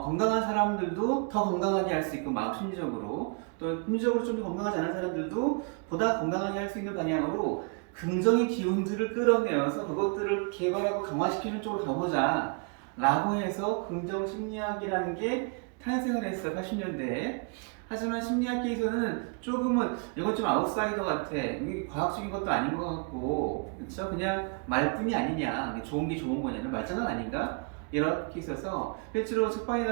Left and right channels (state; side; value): quieter; left; 36.8 dB